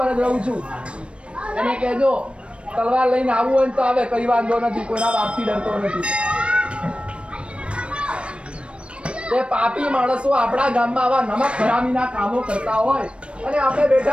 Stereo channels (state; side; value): late; left; 0.059 ms